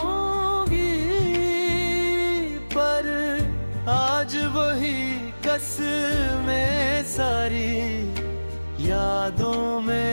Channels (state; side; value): inverted; both; correlation -1.00